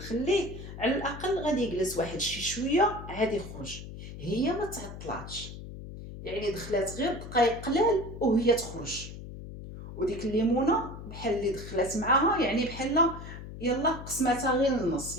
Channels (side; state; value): left; noise; hum, 11 dB below the sound